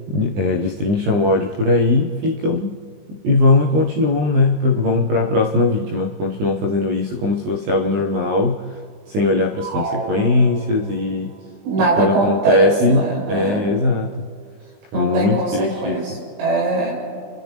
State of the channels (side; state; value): left; late; 20 ms